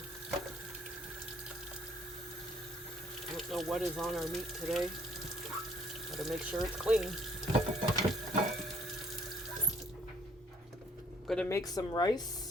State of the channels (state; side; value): normal; both; correlation 0.61